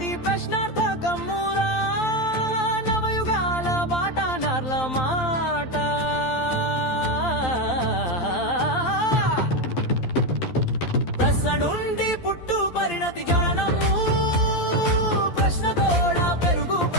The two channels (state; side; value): late; right; 12 ms